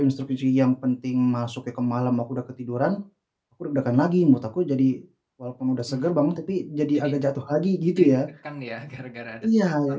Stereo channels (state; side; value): identical; both; correlation 1.00